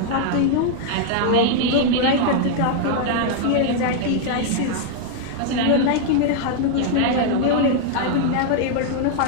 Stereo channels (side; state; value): both; different; correlation 0.00